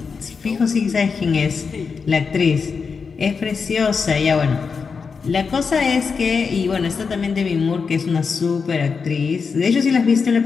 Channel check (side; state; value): right; quieter; 5.4 dB